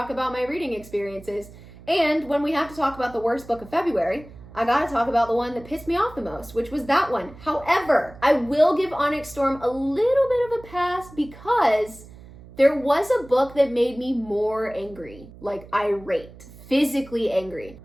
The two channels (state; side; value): noise; right; hum, 19 dB below the sound